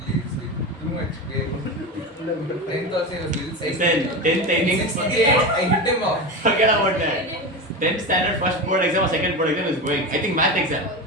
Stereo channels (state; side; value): normal; both; correlation 0.22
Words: is like too much pain. 10th also he was little It's size. then 10th, I think. 68, I hit him off. Forget about that. 10th standard first board exam or second board exam is going. I think math exam.